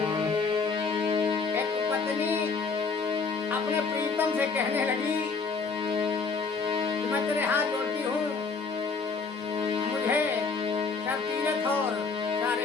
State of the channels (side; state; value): right; quieter; 4.8 dB